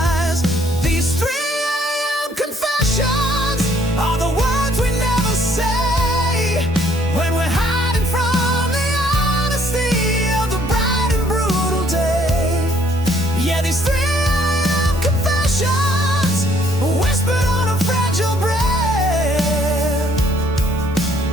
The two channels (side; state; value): both; normal; correlation 0.64